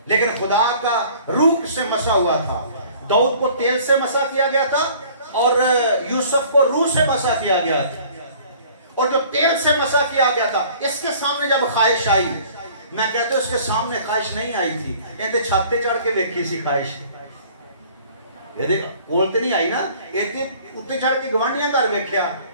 लेकिन खुदा का रूह से मसा हुआ था। दाऊद को तेल से मसा किया गया था और यूसुफ को रूह से मसा किया गया था। और जो तेल से मसा किया गया था, इसके सामने जब ख्वाहिश आई, मैं कहता हूं इसके सामने ख्वाहिश नहीं आई थी, इनके छाते चढ़ के देखी सी ख्वाहिश। ये देख बोलते नहीं आई ना, इनके उत्ते चढ़ के गवांडियां कर वेख्या,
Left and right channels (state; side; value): inverted; both; correlation -0.51